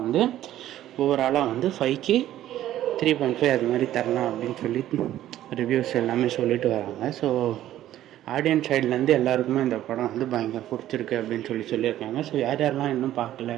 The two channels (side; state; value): left; quieter; 13.0 dB